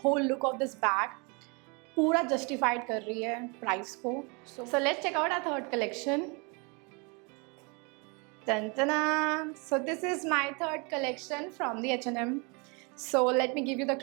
look of this bag, पूरा जस्टिफाइड कर रही है प्राइस को। So let's check out our third collection. So this is my third collection from the H&M. So let me give you the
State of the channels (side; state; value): left; quieter; 31.4 dB